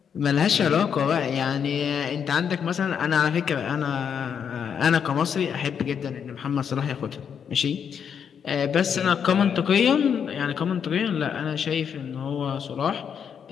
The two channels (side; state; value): right; quieter; 7.6 dB